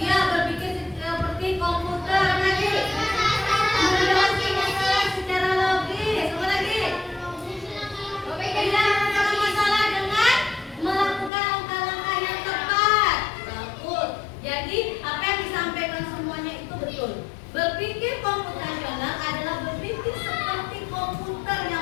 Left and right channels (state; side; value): drops out; right; at 11.3 s